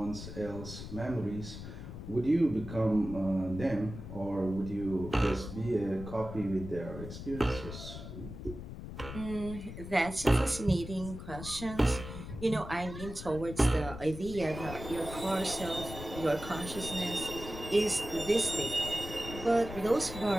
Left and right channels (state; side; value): noise; left; rumble, 10 dB below the sound